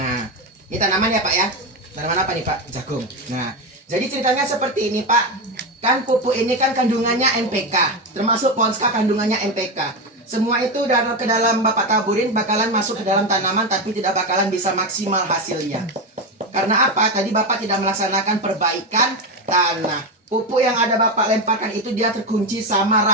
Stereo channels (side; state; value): both; normal; correlation 0.13